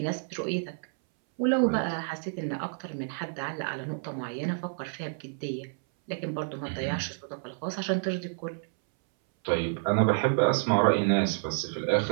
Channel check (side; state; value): left; silent; 58 dB below the other